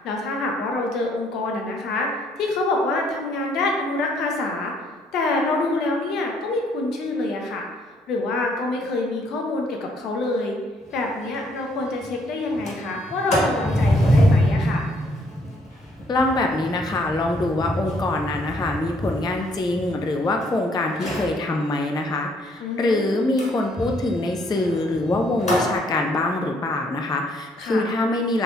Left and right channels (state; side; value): normal; both; correlation 0.66